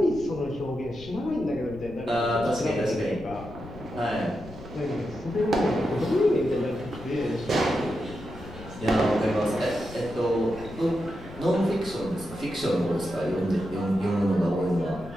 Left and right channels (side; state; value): left; noise; rumble, 15 dB below the sound